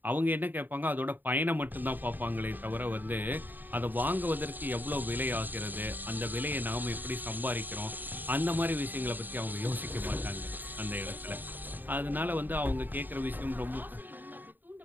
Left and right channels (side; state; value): left; late; 0.090 ms